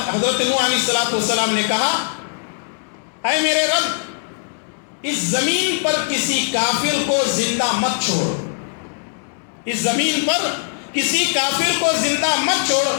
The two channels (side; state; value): right; silent; digital silence